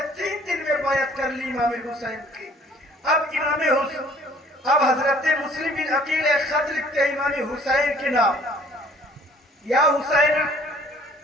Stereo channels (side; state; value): both; normal; correlation 0.55